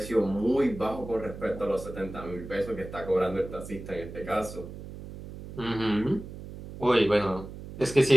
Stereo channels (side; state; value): right; noise; hum, 12 dB below the sound